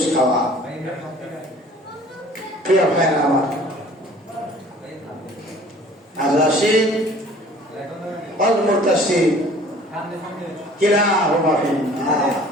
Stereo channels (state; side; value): normal; both; correlation 0.50